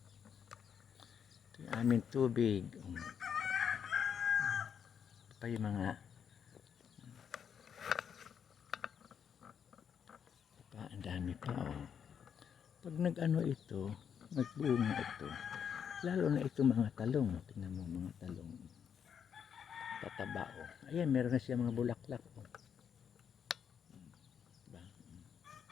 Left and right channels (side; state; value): right; quieter; 7.7 dB